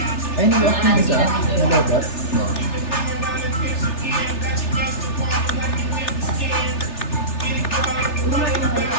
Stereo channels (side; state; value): right; late; 3.3 ms